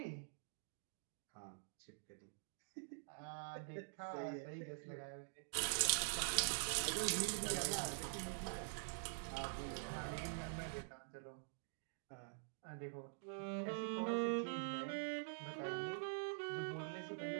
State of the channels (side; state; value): left; silent; digital silence